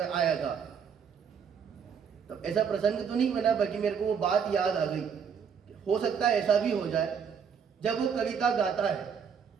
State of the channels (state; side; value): quieter; left; 7.0 dB